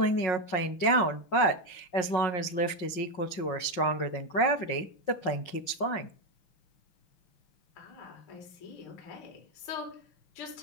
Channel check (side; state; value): right; late; 5.5 ms